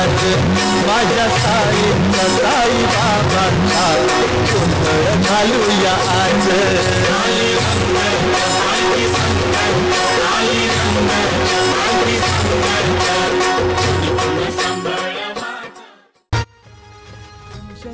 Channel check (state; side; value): identical; both; correlation 1.00